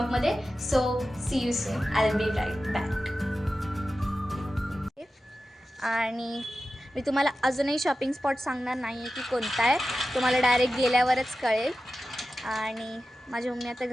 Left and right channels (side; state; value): both; normal; correlation 0.93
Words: So see you soon, I will be right back. आणि मी तुम्हाला अजूनही शॉपिंग स्पॉट सांगणार नाही आहे की कोणता आहे, तुम्हाला डायरेक्ट गेल्यावरच कळेल. आणि माझी मम्मी आता